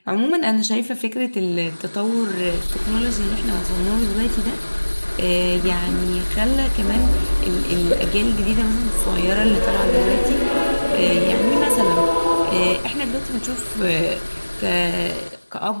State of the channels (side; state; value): both; inverted; correlation -1.00